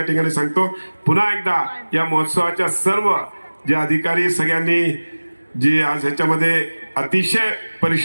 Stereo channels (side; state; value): both; inverted; correlation -1.00